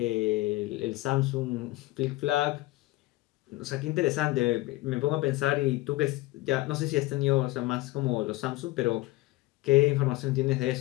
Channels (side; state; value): right; quieter; 19.5 dB